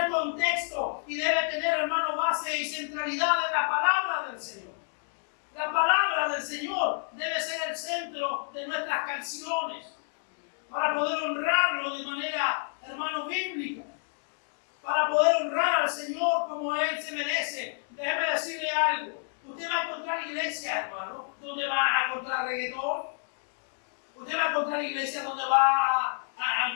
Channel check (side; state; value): right; silent; digital silence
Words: contexto y debe tener, hermano, base y centralidad en la palabra del Señor. La palabra del Señor debe ser el centro de nuestras canciones para poder honrarlo de manera, hermano, bíblica, para poder honrar al Señor como Él se merece. Déjeme decirle algo. Usted va a encontrar iglesia, hermano, donde va a encontrar reggaetón. Usted va a encontrar iglesia donde va a